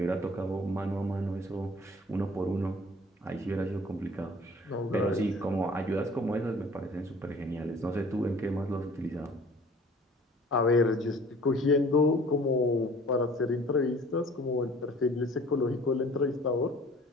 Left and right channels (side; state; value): both; normal; correlation 0.50